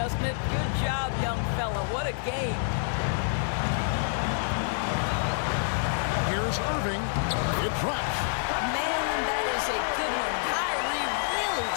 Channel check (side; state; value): right; silent; 60 dB below the other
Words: it? Good job, young fella. What a game. Here's Irving. It drops. Man, that is a good one. Kyrie really